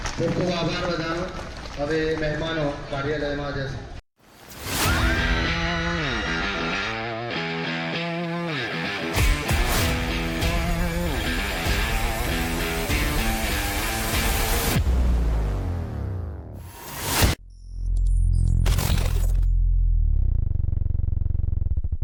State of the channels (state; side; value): identical; both; correlation 1.00